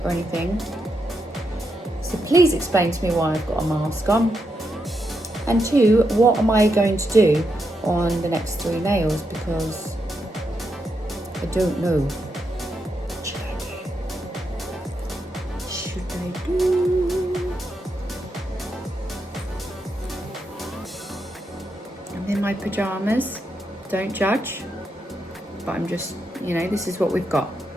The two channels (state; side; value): normal; both; correlation 0.83